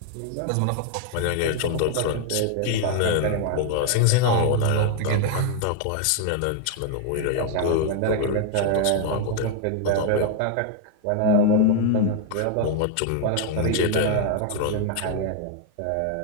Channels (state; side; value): different; both; correlation 0.00